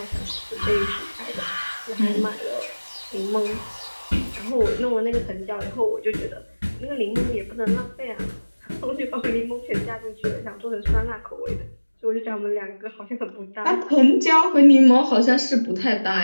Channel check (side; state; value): both; inverted; correlation -1.00